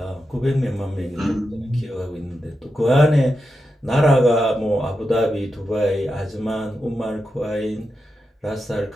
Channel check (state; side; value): normal; both; correlation 0.88